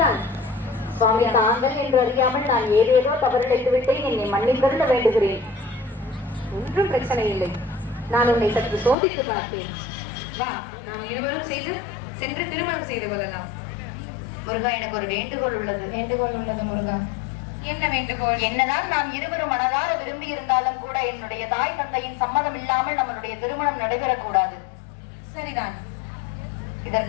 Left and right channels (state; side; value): drops out; right; at 9.0 s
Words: தான் சுவாமி, தாங்கள் என்று அறியாமல் நான் ஏதேதோ தவறிழைத்து விட்டேன். என்னை மன்னிப்பருட வேண்டுகிறேன். ஒன்றும் பிரச்சனை இல்லை. நான் உன்னை சற்று சோதித்து பார்த்தேன். வா, நாம் இருவரும் சென்று திருமணம் செய்து கொள்ளலாம். முருகா, எனக்கு ஒரு வேண்டுகோள் உள்ளது. வேண்டுகோள் உள்ளது முருகா. என்ன வேண்டுகோள்? என்னதான் நாம் இருவரும் மனதார விரும்பி இருந்தாலும் கூட என்னுடைய தாய் தந்தையின் சம்மதம் இல்லாமல் நம்மளுடைய திருமணம் நடைபெறக்கூடாது. சரிதான்.